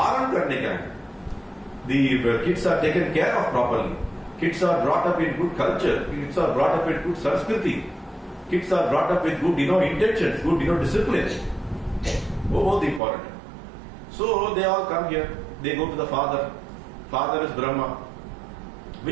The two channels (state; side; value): drops out; left; at 13.0 s